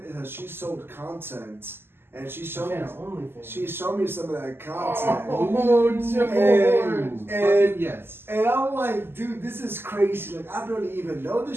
is that she sold content, and she showed me some of that content. And yes. And I'm like, dude, this is crazy. I barely even know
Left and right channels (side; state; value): left; late; 0.11 ms